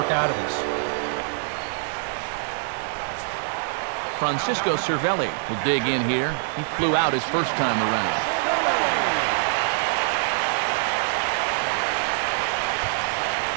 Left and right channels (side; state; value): left; silent; 62 dB below the other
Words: out of this. Francisco Cervelli will dig in here. He flew out his first time around.